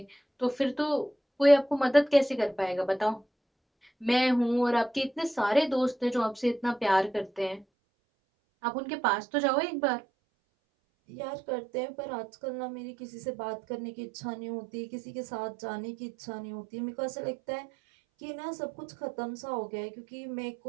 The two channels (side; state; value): left; drops out; at 7.7 s